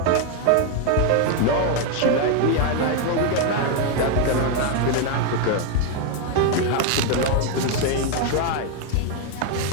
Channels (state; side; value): different; both; correlation 0.01